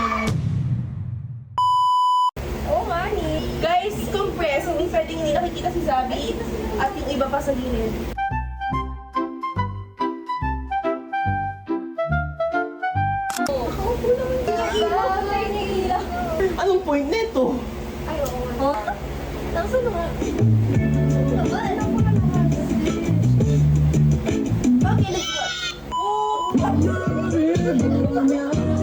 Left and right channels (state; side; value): identical; both; correlation 1.00